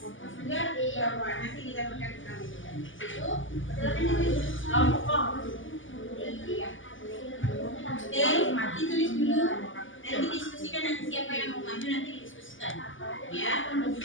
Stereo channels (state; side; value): late; right; 0.57 ms